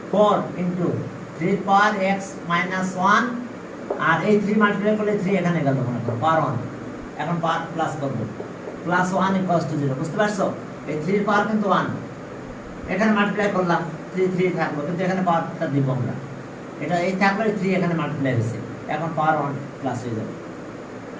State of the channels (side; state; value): both; identical; correlation 1.00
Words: 4 ইনটু 3 পাওয়ার x মাইনাস 1, আর এই 3 মাল্টিপ্লাই করলে 3 এখানে গেল মনে করো পাওয়ার 1, এখন পাওয়ার প্লাস করব, প্লাস 1 ইকুয়ালস টু 0। বুঝতে পারছো? এই 3 এর পাওয়ার কিন্তু 1, এখানে মাল্টিপ্লাই করলাম 3 থাকলো, কিন্তু এখানে পাওয়ারটা দিব আমরা, এটা এই থাকলে 3 এখানে মাল্টিপ্লাই হয়েছে, এখন পাওয়ার 1 প্লাস হয়ে যাবে।